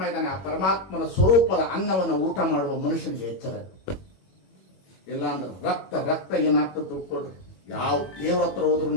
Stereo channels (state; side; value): late; right; 21 ms